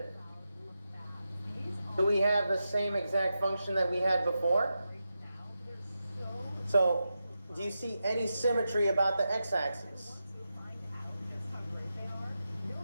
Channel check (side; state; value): both; inverted; correlation -0.89